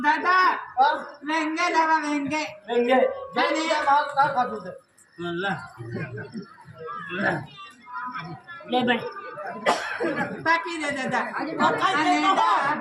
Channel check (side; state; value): both; identical; correlation 1.00